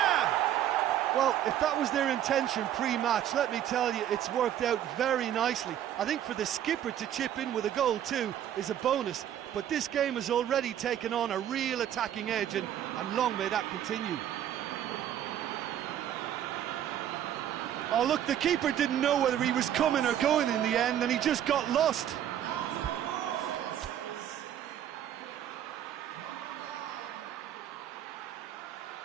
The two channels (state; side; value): quieter; left; 10.8 dB